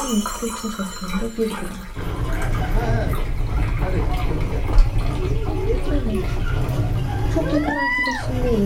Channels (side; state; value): both; identical; correlation 1.00